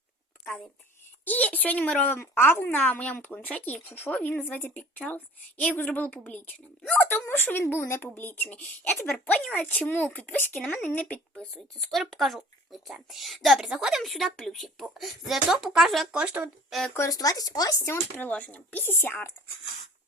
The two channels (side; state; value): both; normal; correlation 0.47